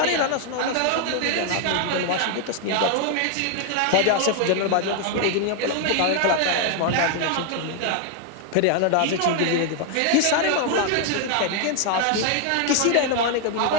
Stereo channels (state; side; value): different; both; correlation 0.00